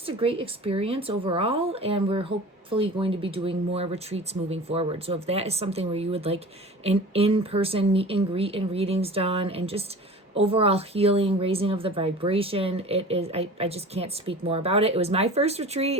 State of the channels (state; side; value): normal; both; correlation 0.38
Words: a great experience overall, and we're hopefully going to be doing more retreats moving forward. So if that is something where you would like an in-person meet and greet and readings done, and just overall healing, raising of the vibration, it is, I just can't speak more about it. It was my first